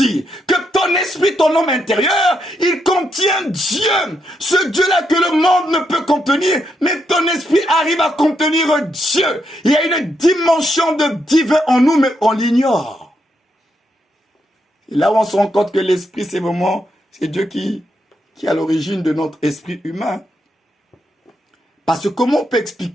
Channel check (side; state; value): both; normal; correlation 0.80